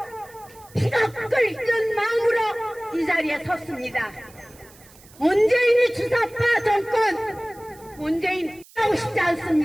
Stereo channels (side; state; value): right; noise; hiss, 24 dB below the sound